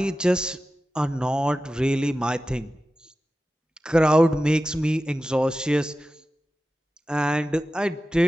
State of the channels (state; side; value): normal; both; correlation 0.94